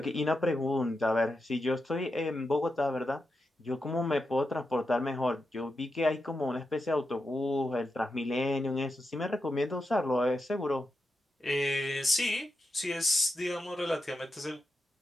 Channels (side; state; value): both; normal; correlation 0.88